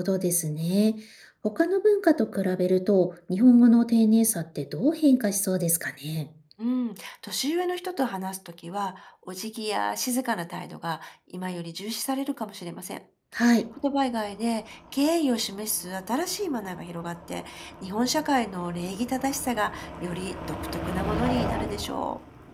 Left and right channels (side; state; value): both; identical; correlation 1.00